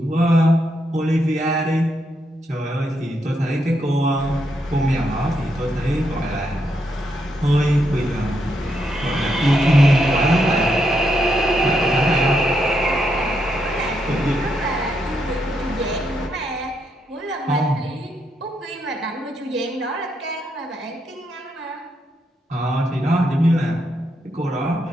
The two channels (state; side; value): normal; both; correlation 0.80